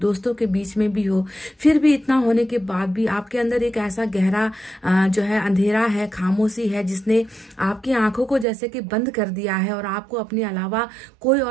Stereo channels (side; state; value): left; drops out; at 8.5 s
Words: के बीच में भी हो। फिर भी इतना होने के बाद भी आपके अंदर एक ऐसा गहरा जो है अंधेरा है, खामोशी है, जिसने आपकी आंखों को जैसे कि बंद कर दिया है और आपको अपने अलावा कोई